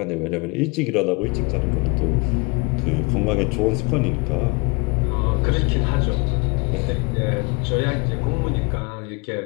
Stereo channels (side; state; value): right; quieter; 29.8 dB